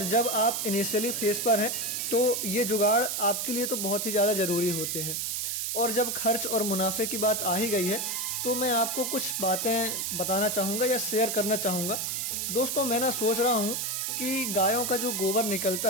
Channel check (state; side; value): noise; right; hiss, 1 dB below the sound